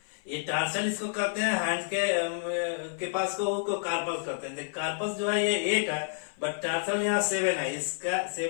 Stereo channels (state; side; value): silent; right; 55 dB below the other